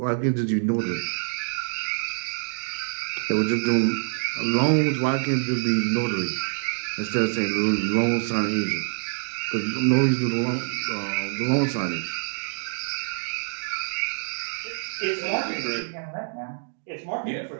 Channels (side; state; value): left; silent; digital silence